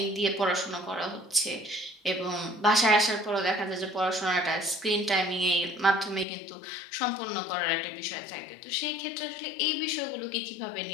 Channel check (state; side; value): drops out; right; at 6.2 s